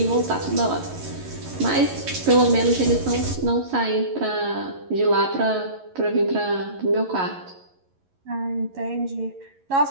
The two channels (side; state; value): left; late; 11 ms